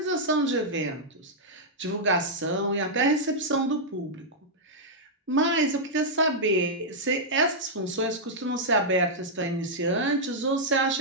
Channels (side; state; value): both; normal; correlation -0.07